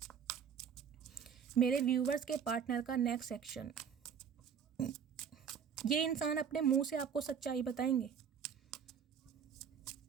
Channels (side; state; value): left; quieter; 7.4 dB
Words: मेरे व्यूवर्स के पार्टनर का नेक्स्ट एक्शन। ये इंसान अपने मुंह से आपको सच्चाई बताएंगे।